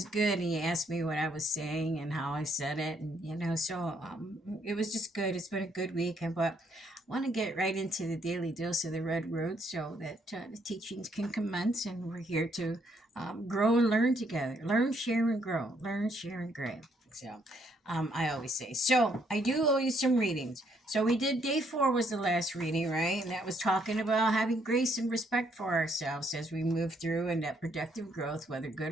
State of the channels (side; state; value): both; normal; correlation 0.71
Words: good. And he asked me what I was saying and how I said it. And, so it was just good. It's been a good weekend. But I want to get right into the daily dose of the Red Road so that the teachings can commence. And we're here to grow and learn together. Learn, share, and grow. Learn, share, and grow. So I always say. So I do owe you some readings. So we did day 4 was the last reading, right? And that was talking about having grace and respect for ourselves as we move through, and that productive growth, whether